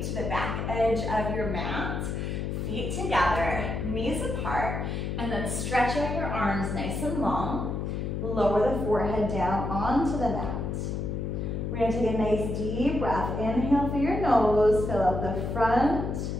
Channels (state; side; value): noise; left; hum, 3 dB below the sound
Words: to the back edge of your mat, feet together, knees apart, and then stretch out your arms nice and long. Lower the forehead down onto the mat. We're going to take a nice deep breath. Inhale through your nose, fill up the front,